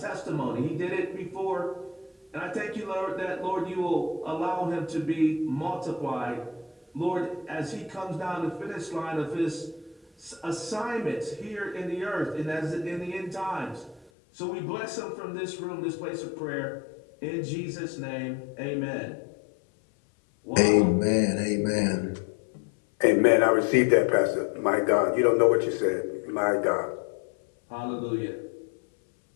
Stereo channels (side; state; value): right; drops out; at 14.1 s